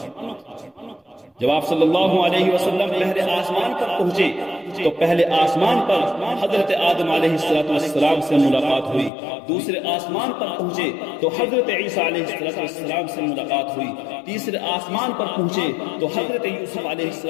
جب آپ صلی اللہ علیہ وسلم پہلے آسمان پر پہنچے تو پہلے آسمان پر حضرت آدم علیہ السلام سے ملاقات ہوئی، دوسرے آسمان پر پہنچے تو حضرت عیسیٰ علیہ السلام سے ملاقات ہوئی، تیسرے آسمان پر پہنچے تو حضرت یوسف علیہ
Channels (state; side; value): drops out; right; at 9.1 s